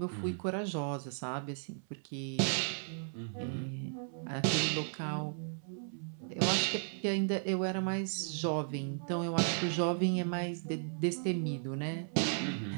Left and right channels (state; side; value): silent; left; 54 dB below the other